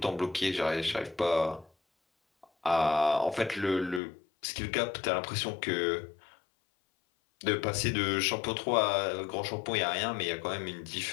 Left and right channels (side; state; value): right; drops out; at 4.0 s